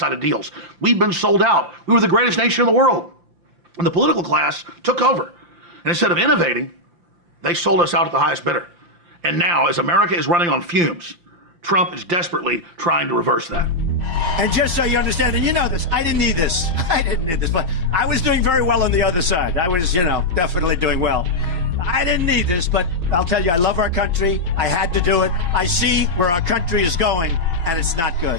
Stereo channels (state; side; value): late; left; 5.8 ms